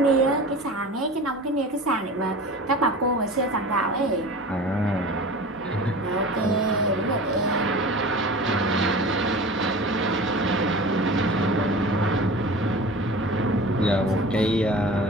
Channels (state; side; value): normal; both; correlation 0.37